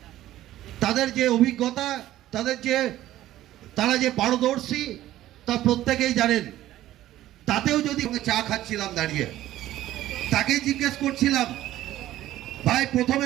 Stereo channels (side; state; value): left; quieter; 14.1 dB